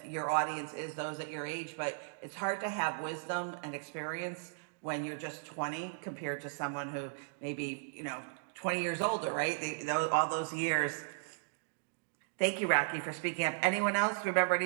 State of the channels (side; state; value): left; silent; digital silence